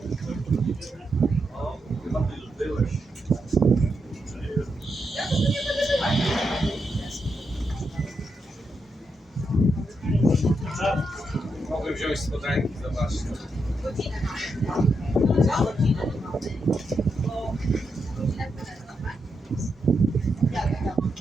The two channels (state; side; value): normal; both; correlation 0.83